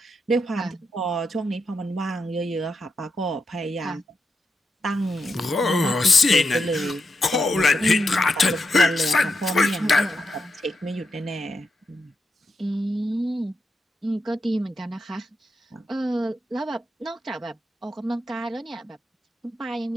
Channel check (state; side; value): normal; both; correlation 0.85